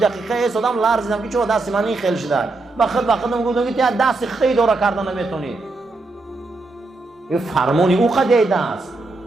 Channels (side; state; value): left; quieter; 3.3 dB